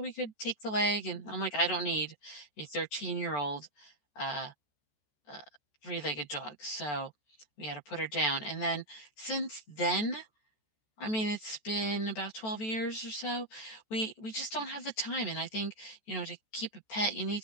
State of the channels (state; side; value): late; right; 14 ms